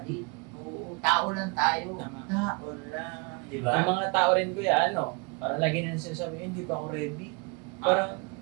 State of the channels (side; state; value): left; quieter; 31.6 dB